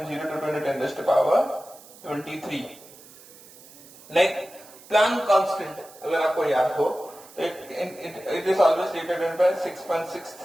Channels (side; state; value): right; noise; hiss, 21 dB below the sound